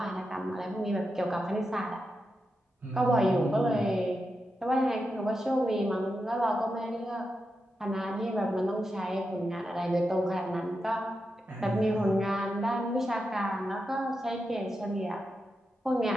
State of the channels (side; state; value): both; normal; correlation 0.88